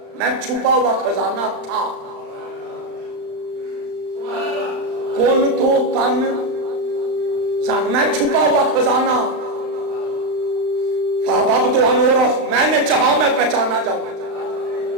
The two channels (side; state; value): left; late; 35 ms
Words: میں چھپا ہوا خزانہ تھا، کن تو کنزن میں چھپا ہوا خزانہ، فَأَحْبَبْتُ أَنْ أُعْرَفَ میں نے چاہا میں پہچانا جاؤں،